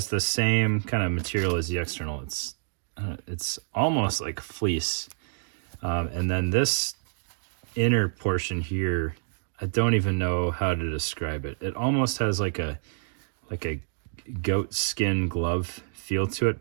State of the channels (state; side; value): silent; left; digital silence